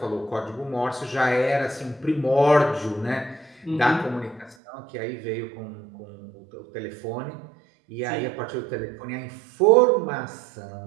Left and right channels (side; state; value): left; drops out; at 4.5 s